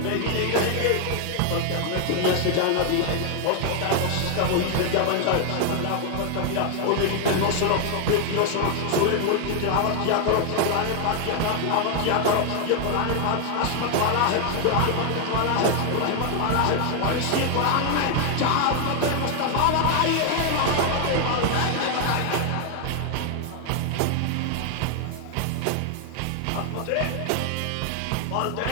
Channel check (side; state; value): both; different; correlation 0.00